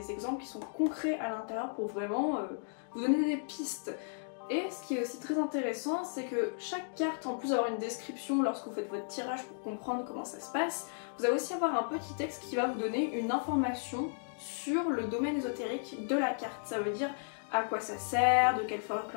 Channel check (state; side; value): silent; right; digital silence